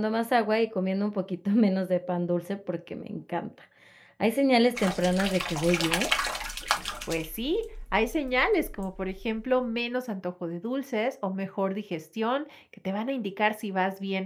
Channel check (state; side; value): identical; both; correlation 1.00